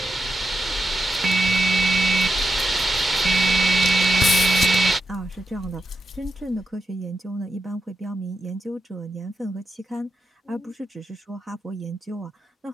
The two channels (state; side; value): normal; both; correlation 0.87